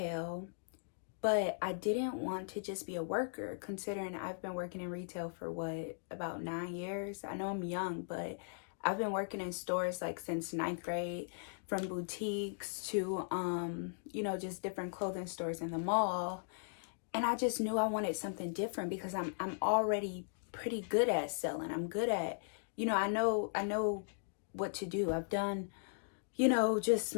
but I didn't want to just be a worker, considering I've been working in retail for about 9 years. I know I'm young, but I've been working in stores like since 9th grade, from boutiques to, you know, just different clothing stores in the mall. And I just knew I wanted something different because I'm already pretty good at selling. I'm good at, you know, I know what to do. I've done, you know, just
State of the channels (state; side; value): silent; right; digital silence